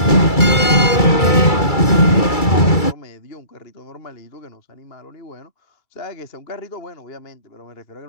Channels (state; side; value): late; right; 2.3 ms